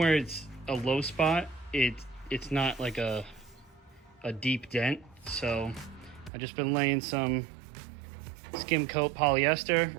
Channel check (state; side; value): drops out; left; at 6.3 s